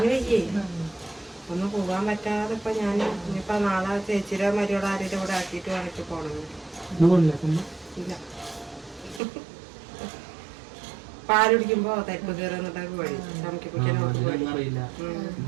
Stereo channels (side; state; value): left; drops out; at 9.2 s